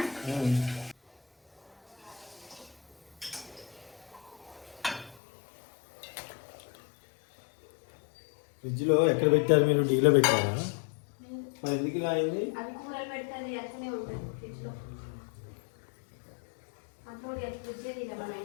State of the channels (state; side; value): drops out; right; at 5.2 s